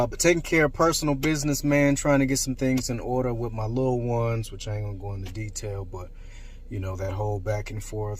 taking care of personal business, man, trying to get some things in order with my little ones, which I ain't gonna go into detail, but you know, that whole back and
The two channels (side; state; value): both; identical; correlation 1.00